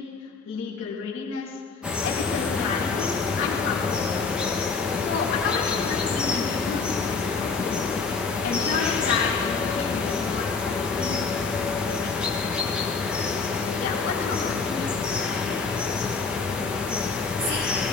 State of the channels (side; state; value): right; quieter; 4.6 dB